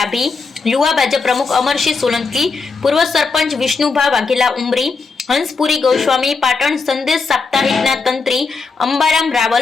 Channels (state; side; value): quieter; right; 4.5 dB